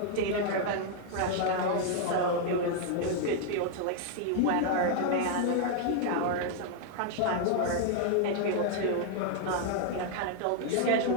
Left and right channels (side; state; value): both; different; correlation 0.00